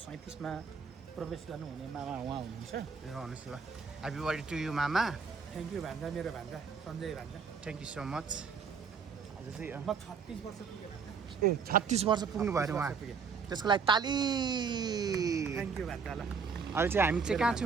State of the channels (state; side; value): quieter; left; 5.7 dB